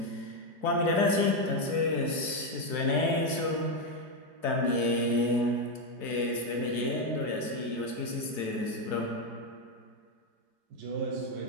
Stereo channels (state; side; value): late; left; 4.6 ms